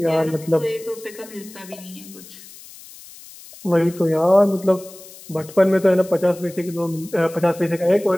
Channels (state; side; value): noise; left; hiss, 19 dB below the sound